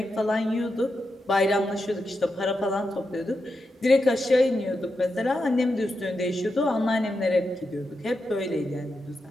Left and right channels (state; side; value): normal; both; correlation 0.87